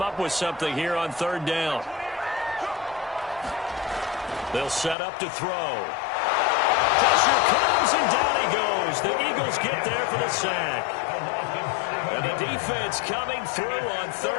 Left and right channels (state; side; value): drops out; right; at 5.0 s